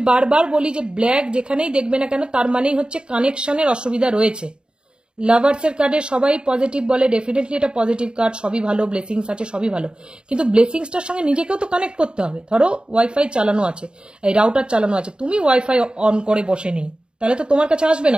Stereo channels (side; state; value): left; late; 0.050 ms